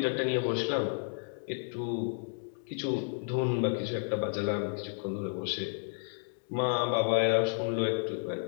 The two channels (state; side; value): silent; right; digital silence